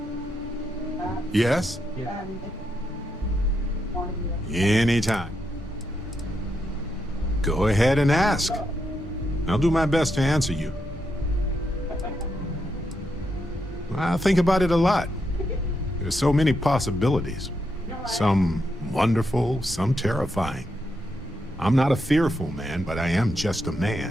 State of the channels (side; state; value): both; normal; correlation 0.82